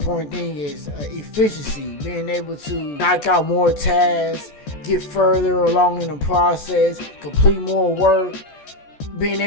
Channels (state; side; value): late; right; 14 ms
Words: thing, is efficiency, being able to knock out more tasks, get further along in the process, complete more work. Being